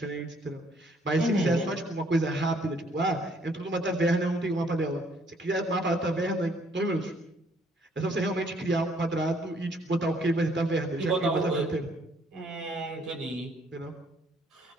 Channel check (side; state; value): both; normal; correlation 0.65